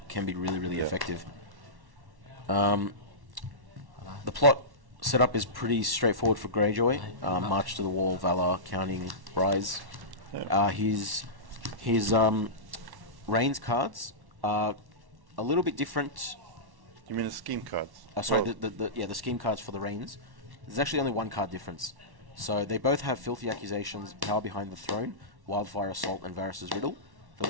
can be really effective. The plot setup is pretty straightforward for Greyjoy. March to the Wall, Valor, Counting, Rise. Yeah. His Rains cards are a little bit different. You mean the scheme cards? Sorry, the scheme cards for the Rains. There's actually only one card difference. So they both have Filthy Accusations, Power Behind the Throne, Wildfire Assault, and Varys' Riddle. The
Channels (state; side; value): late; left; 1.1 ms